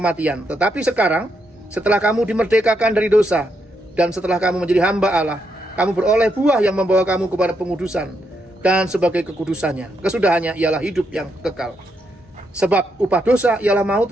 Tetapi sekarang, setelah kamu dimerdekakan dari dosa, dan setelah kamu menjadi hamba Allah, kamu beroleh buah yang membawa kamu kepada pengudusan. Dan sebagai kekudusannya, kesudahannya ialah hidup yang kekal. Sebab upah dosa ialah maut,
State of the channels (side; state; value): both; normal; correlation 0.79